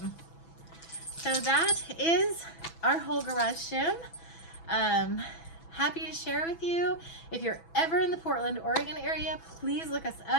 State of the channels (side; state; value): right; late; 6.1 ms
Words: So that is our whole garage gym. Happy to share with you. If you're ever in the Portland, Oregon area, please look us